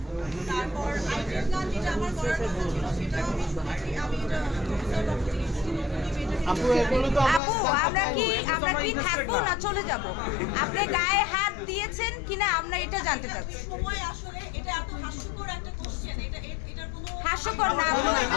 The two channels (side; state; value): right; drops out; at 7.4 s